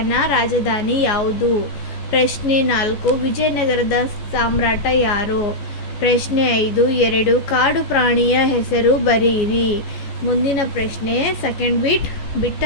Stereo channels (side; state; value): right; late; 14 ms